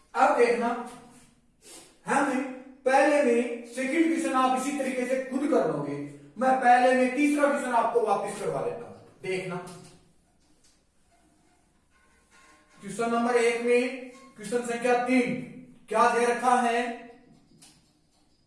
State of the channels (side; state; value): both; identical; correlation 1.00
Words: अब देखना हम पहले में सेकंड क्वेश्चन आप इसी तरीके से खुद कर लोगे, मैं पहले में तीसरा क्वेश्चन आपको वापस करवा देता हूं। देखना क्वेश्चन नंबर 1 में क्वेश्चन संख्या 3 क्या दे रखा है,